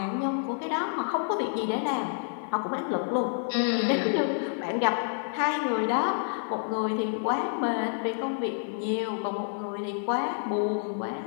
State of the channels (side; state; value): right; silent; 59 dB below the other